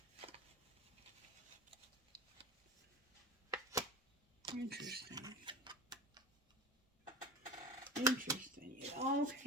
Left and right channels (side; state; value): both; normal; correlation 0.29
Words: Interesting. It all